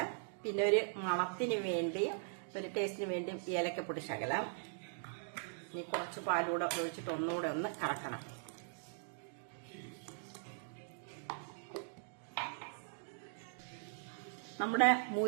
പിന്നെ ഒരു മണത്തിന് വേണ്ടി, ഒരു ടേസ്റ്റിന് വേണ്ടി ഏലക്കപ്പൊടി ശകലം. ഇനി കുറച്ച് പാലൂടെ ഒഴിച്ചിട്ട് ഒന്നുകൂടെ ഒന്ന് കറക്കണം. നമ്മുടെ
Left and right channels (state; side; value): silent; left; digital silence